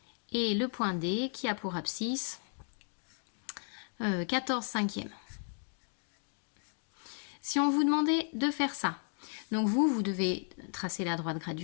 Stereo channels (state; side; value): silent; right; 55 dB below the other